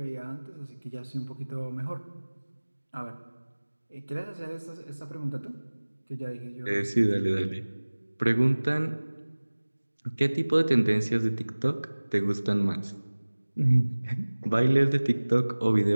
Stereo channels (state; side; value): inverted; both; correlation -1.00